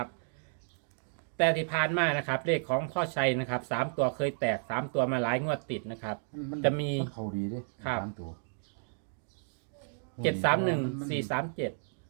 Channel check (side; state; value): left; silent; digital silence